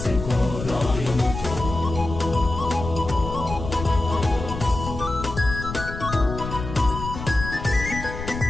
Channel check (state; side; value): noise; left; rumble, 8 dB below the sound